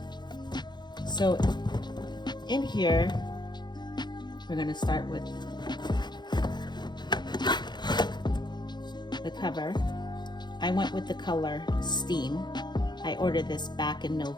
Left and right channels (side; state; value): right; late; 0.21 ms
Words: So in here, we're going to start with the cover. I went with the color Steam. I ordered this back in